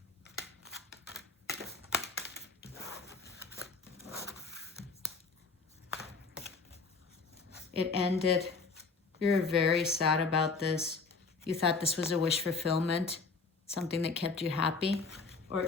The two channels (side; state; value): right; quieter; 4.4 dB